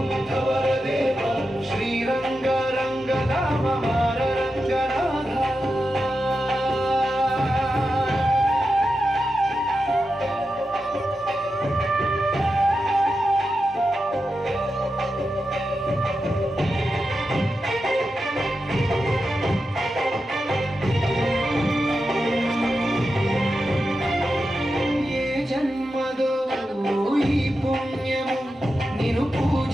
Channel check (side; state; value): both; normal; correlation 0.89